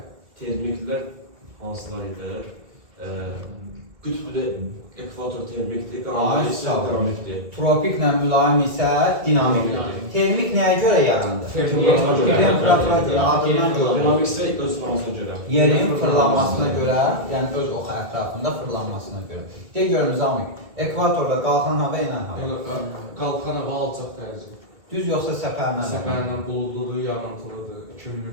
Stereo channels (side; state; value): left; late; 2.4 ms